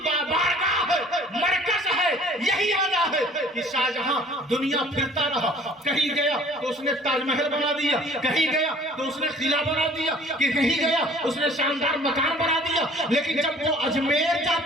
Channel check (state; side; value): normal; both; correlation 0.52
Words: بارگاہ ہے، مرکز ہے، یہی وجہ ہے کہ شاہجہاں دنیا پھرتا رہا، کہیں گیا تو اس نے تاج محل بنا دیا، کہیں گیا تو اس نے قلعہ بنا دیا، کہ کہیں گیا اس نے شاندار مکان بنا دیا، لیکن جب وہ اجمیر